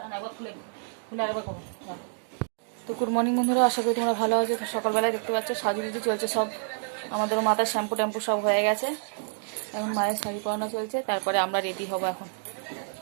না একবার খুলে খুলে আরেকবার করবো। তো গুড মর্নিং বন্ধুরা, আশা করি তোমরা ভালো আছো। তো সকালবেলায় দেখতে পাচ্ছ সাজুগুজু চলছে সব, আমাদেরও মাথার শ্যাম্পু ট্যাম্পু সব হয়ে গেছে। এখন মায়ের শাড়ি পরানো চলছে, তারপরে আমরা রেডি হব।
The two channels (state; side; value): silent; left; digital silence